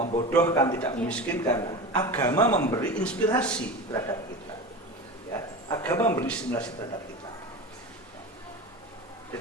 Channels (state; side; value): normal; both; correlation 0.29